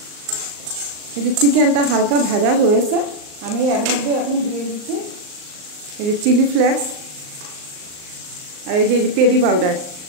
এই যে চিকেনটা হালকা ভাজা হয়েছে, আমি এর মধ্যে এখন দিয়ে দিচ্ছি এই যে চিলি ফ্লেক্স, আর এই যে পেরি পাউডার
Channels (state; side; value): late; left; 38 ms